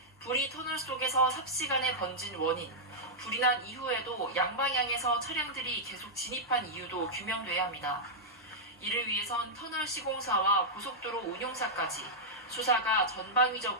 불이 터널 속에서 삽시간에 번진 원인, 불이 난 이후에도 양방향에서 차량들이 계속 진입한 이유도 규명돼야 합니다. 이를 위해선 터널 시공사와 고속도로 운용사까지 수사가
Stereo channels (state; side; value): normal; both; correlation -0.07